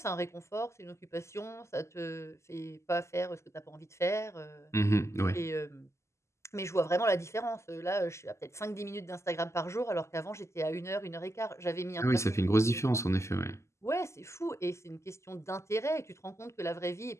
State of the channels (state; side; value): late; right; 0.13 ms